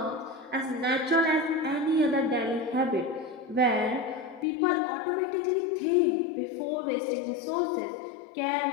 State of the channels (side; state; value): right; drops out; at 4.5 s